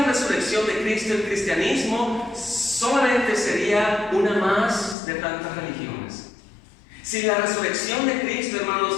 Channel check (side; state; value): right; drops out; at 5.0 s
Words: resurrección de Cristo, el cristianismo solamente sería una más de tantas religiones. Sin la resurrección de Cristo, hermanos,